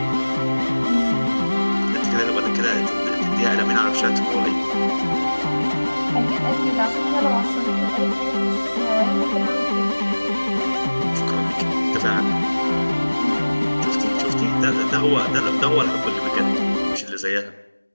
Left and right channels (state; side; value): inverted; both; correlation -1.00